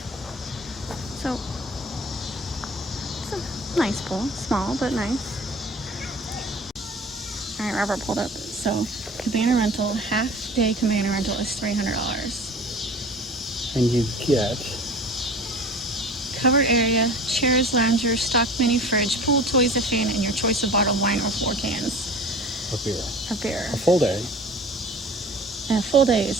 So it's a nice pool. Small, but nice. All right, Robert pulled up. So cabana rental, half-day cabana rental is $300. And you get Covered area, chairs, loungers, stock mini fridge, pool, toys, a fan, and your choice of bottled wine or 4 cans a beer. of beer. A full day. And a full day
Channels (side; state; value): both; normal; correlation 0.41